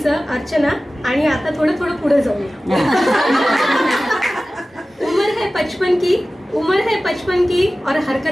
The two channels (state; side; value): normal; both; correlation 0.96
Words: अर्चना. आणि आता थोडं थोडं पुढे जाऊया. उम्र है 55 की, उम्र है 55 की और